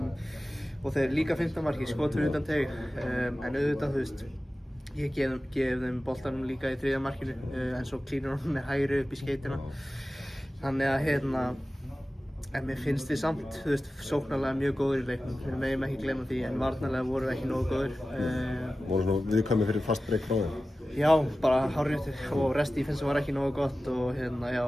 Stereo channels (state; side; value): normal; both; correlation 0.95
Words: og þeir líka 15 marki, skotur utan teig en auðvitað, þú veist, ég gef þeim boltanum líka í 3. markinu en svo klínur hann með hægri upp í skeytina þannig að en mér finnst þið samt, þú veist, sóknarlega mjög góður í leiknum, við megum ekki gleyma því en varnarlega vorum við ekki nógu góður. Voru svona viðkvæmir fyrir fast break frá þeim? Já, bara hárrétt og rest defense var ekki nógu gott og